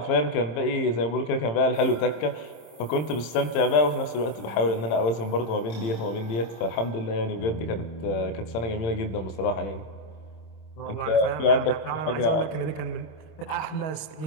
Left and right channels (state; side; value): late; right; 26 ms